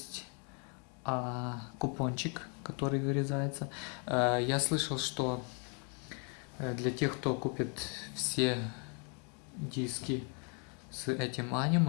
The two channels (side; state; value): right; quieter; 37.9 dB